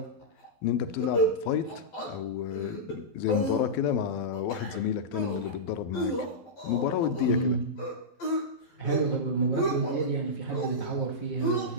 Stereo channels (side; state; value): right; late; 11 ms